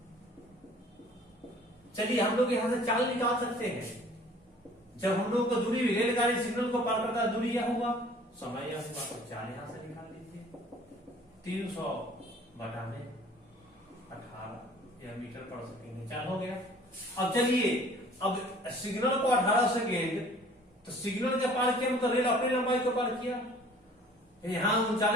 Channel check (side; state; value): both; normal; correlation 0.52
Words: चलिए हम लोग यहां से चाल निकाल सकते हैं। जब हम लोग को दूरी रेलगाड़ी सिग्नल को पार करता है, दूरी यह हुआ, समय यह हुआ, तो चाल यहां से निकाल लीजिए। 300 बटा में 18 या मीटर पर सेकेंड चाल हो गया। अब चलिए, अब सिग्नल को 18 सेकेंड, तो सिग्नल के पार किया मतलब रेल अपनी लंबाई को पार किया। यहां